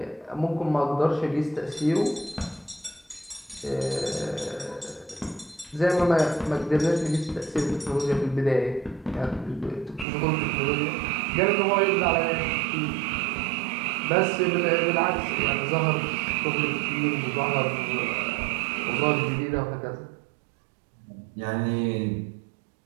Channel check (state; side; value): drops out; left; at 10.1 s